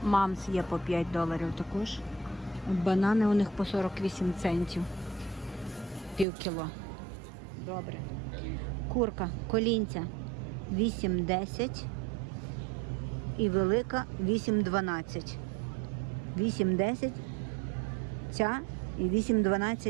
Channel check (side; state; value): left; drops out; at 6.2 s